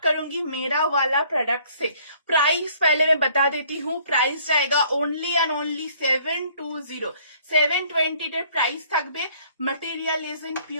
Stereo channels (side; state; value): both; inverted; correlation -0.59